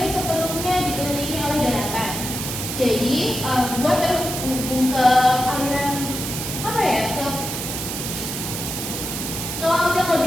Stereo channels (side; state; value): right; noise; hiss, 5 dB below the sound